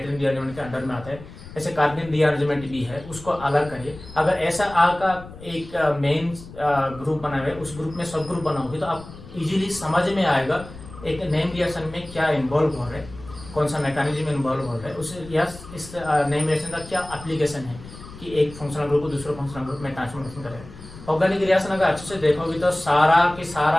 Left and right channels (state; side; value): noise; left; rumble, 16 dB below the sound